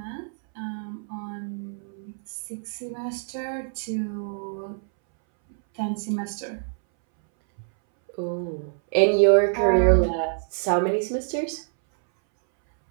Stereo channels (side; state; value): left; silent; 61 dB below the other